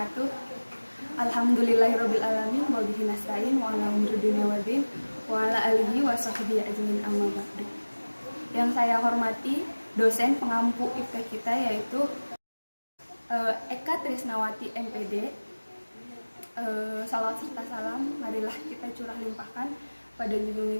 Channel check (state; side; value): inverted; both; correlation -1.00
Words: Alhamdulillahirobbilalamin wa bihi nasta'in wa ala umuri dunya waddin wa ala alihi wa sahbihi ajmain amma ba'du. Yang saya hormati dosen pengampu IPK kita yaitu Eka Trisnawati MPD. Salawat serta salam marilah kita curah limpahkan pada junjungan